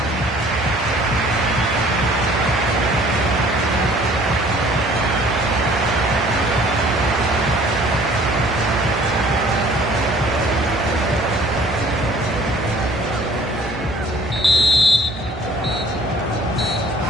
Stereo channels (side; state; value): both; normal; correlation 0.54